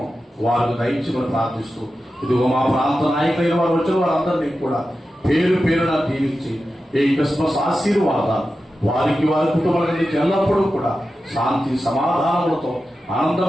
వారికి దయచేయమని ప్రార్థిస్తూ ఇదిగో మా ప్రాంత నాయకులైన వారు వచ్చిన వారందరినీ కూడా పేరు పేరున దీవించి ఈ క్రిస్మస్ ఆశీర్వాదాలు వారికి, వారి కుటుంబానికి ఎల్లప్పుడూ కూడా శాంతి సమాధానములతో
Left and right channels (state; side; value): normal; both; correlation 0.92